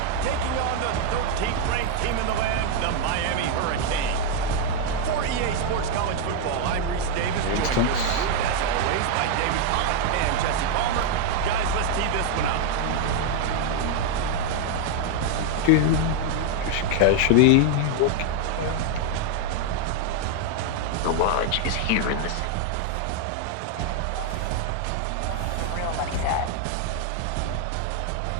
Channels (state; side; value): different; both; correlation 0.00